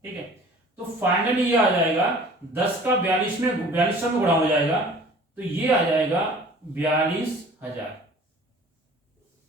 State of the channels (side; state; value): both; normal; correlation 0.47